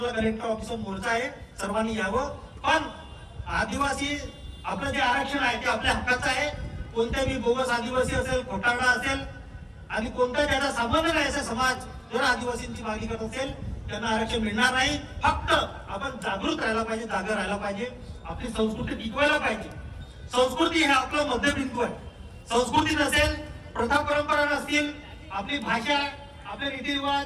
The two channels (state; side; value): identical; both; correlation 1.00